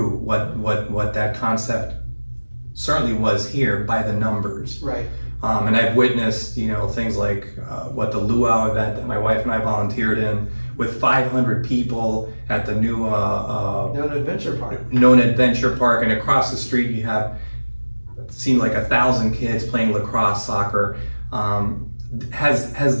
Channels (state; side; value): inverted; both; correlation -1.00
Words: what that concept certainly was here by the numbers. Right. And I've witnessed, things like what the luau event that my wife and I volunteered in with 500 people at the new Nona Adventure Park. Nona Adventure Park, and across the street you have seemed like 1,000 kids playing lacrosse, soccer. Has